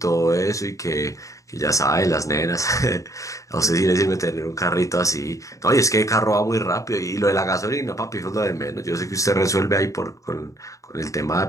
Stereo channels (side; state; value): right; late; 0.16 ms